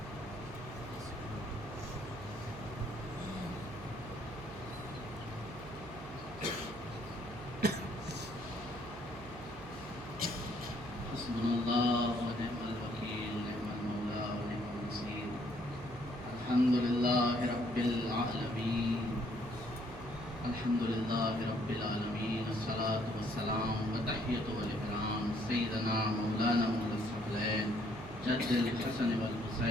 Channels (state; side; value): noise; right; hum, 14 dB below the sound